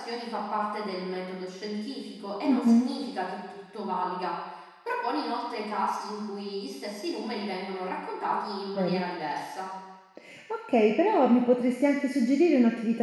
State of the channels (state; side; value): identical; both; correlation 1.00